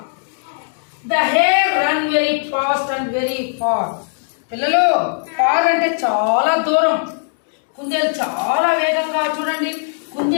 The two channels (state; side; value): silent; right; digital silence